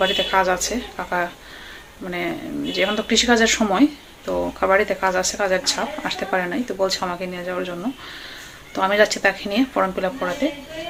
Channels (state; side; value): identical; both; correlation 1.00